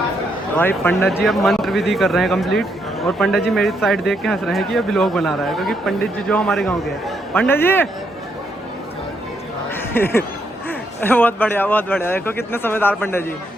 भाई पंडित जी अब मंत्र विधि कर रहे हैं कंप्लीट और पंडित जी मेरी साइड देख के हंस रहे हैं कि ये व्लॉग बना रहा है, क्योंकि पंडित जी जो हमारे गांव के हैं। पंडित जी बहुत बढ़िया देखो कितने समझदार पंडित जी,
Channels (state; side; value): normal; both; correlation 0.77